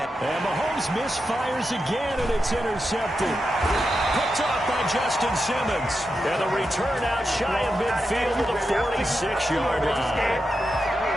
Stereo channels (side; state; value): both; normal; correlation 0.88